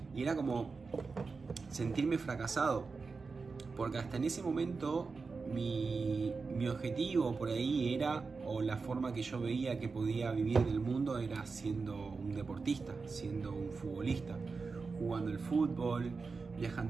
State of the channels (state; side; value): quieter; left; 4.5 dB